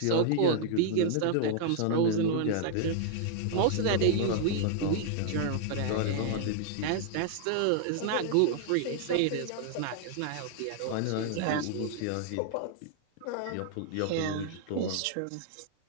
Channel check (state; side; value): different; both; correlation -0.01